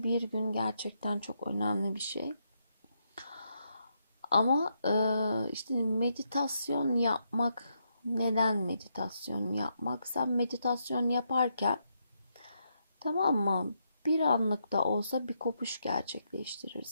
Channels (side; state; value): both; inverted; correlation -0.80